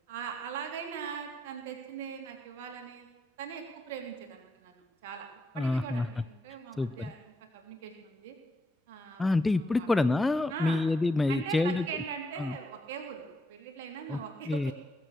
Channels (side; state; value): both; normal; correlation 0.81